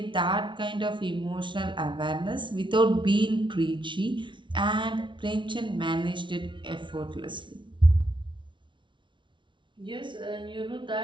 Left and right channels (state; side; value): late; left; 0.24 ms